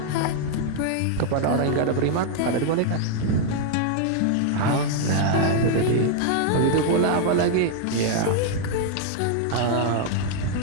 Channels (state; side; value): different; both; correlation 0.00